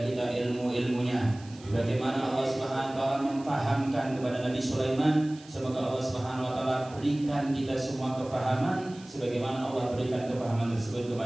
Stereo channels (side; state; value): right; noise; hiss, 22 dB below the sound